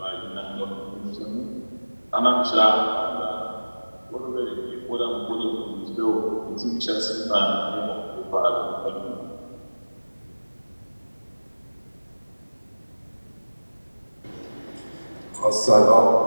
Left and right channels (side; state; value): both; inverted; correlation -1.00